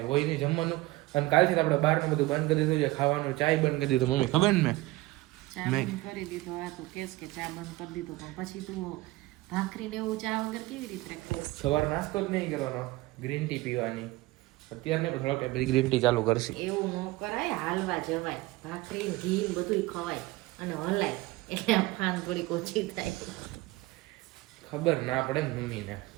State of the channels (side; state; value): left; quieter; 19.4 dB